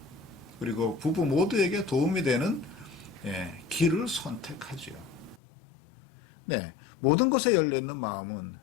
그리고 부부 모두에게 도움이 되는 길을 선택하지요. 네, 모든 것에 열려있는 마음은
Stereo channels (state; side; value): drops out; right; at 5.4 s